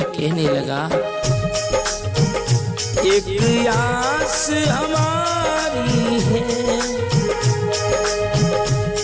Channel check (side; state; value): both; identical; correlation 1.00